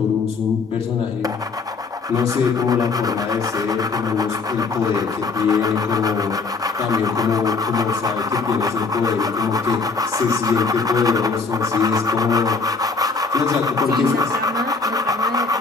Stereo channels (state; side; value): quieter; right; 4.4 dB